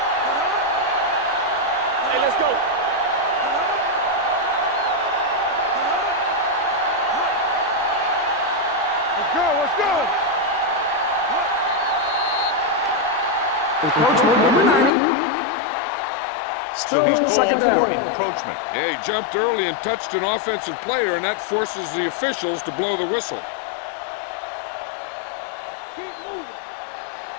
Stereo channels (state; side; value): drops out; right; at 14.9 s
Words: Hey, let's go. Let's go. Encroachment number 90. So he's called second down. for encroachment. Yeah, he jumped early and touched an offensive player, and that forces the officials to blow the whistle. Keep moving.